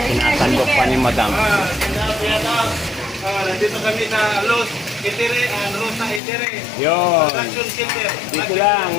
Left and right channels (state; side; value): drops out; right; at 6.2 s